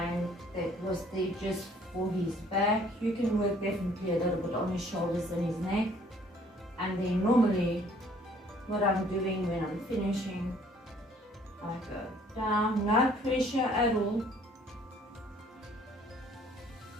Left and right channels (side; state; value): both; normal; correlation 0.59